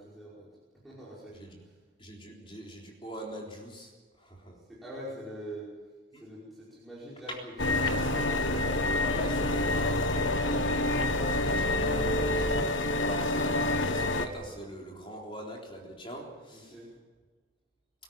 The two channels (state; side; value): normal; both; correlation 0.13